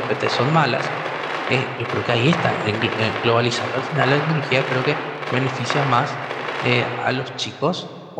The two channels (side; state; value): both; identical; correlation 1.00